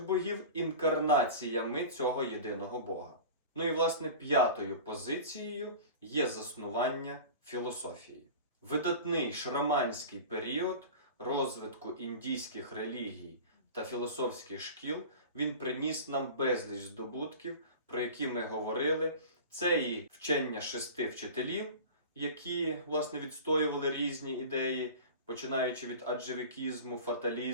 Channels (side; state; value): both; inverted; correlation -0.35